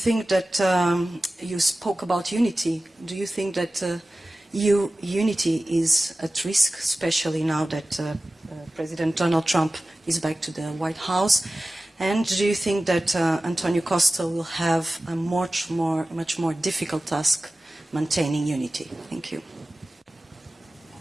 that you spoke about unity? Do you think that unity is at risk, especially now that President Donald Trump is back to the White House? And do you think that Antonio Costa will have a much more difficult task maintaining unity? Thank you.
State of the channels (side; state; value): both; normal; correlation 0.96